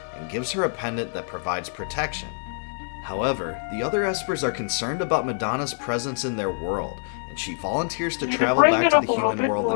and gives her a pendant that provides protection. However, the other Espers are concerned about Madonna's presence in their world, and she volunteers to travel back to the human world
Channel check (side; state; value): right; silent; 62 dB below the other